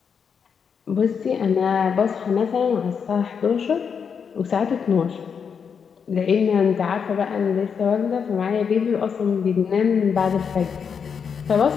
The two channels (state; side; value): quieter; right; 6.6 dB